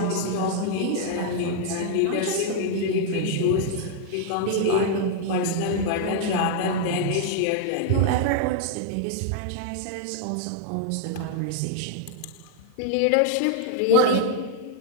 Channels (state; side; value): different; both; correlation 0.00